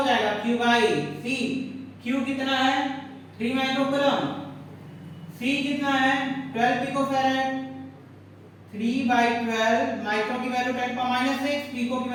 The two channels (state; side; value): identical; both; correlation 1.00